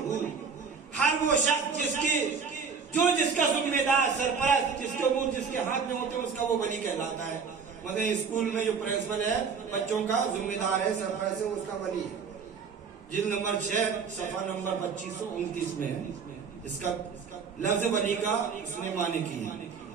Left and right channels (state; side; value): quieter; left; 5.7 dB